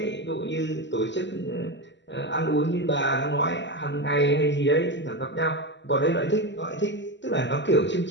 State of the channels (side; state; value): right; late; 0.52 ms